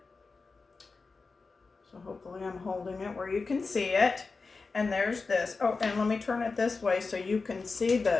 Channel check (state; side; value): quieter; right; 4.2 dB